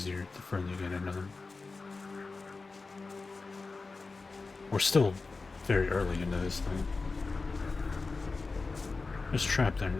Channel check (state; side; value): quieter; right; 4.0 dB